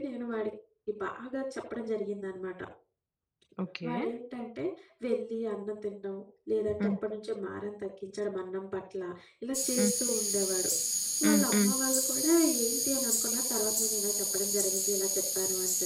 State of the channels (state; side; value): identical; both; correlation 1.00